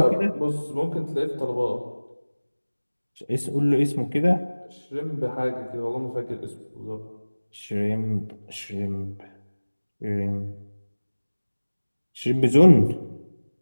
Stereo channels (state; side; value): inverted; both; correlation -1.00